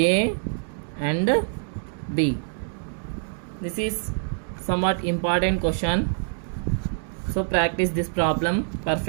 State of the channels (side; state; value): left; silent; digital silence